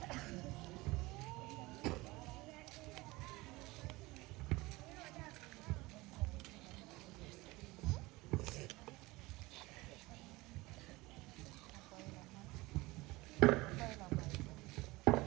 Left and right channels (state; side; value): quieter; left; 21.5 dB